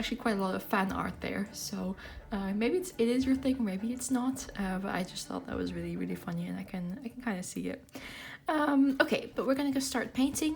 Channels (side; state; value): both; identical; correlation 1.00